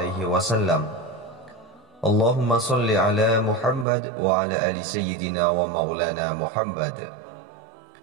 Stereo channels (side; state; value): left; drops out; at 3.9 s